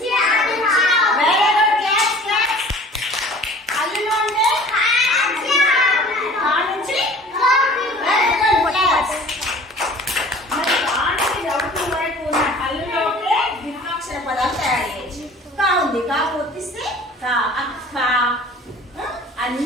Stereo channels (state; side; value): normal; both; correlation 0.47